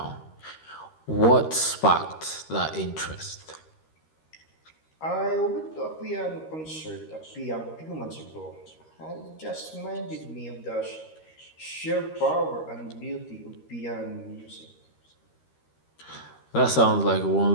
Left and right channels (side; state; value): right; late; 13 ms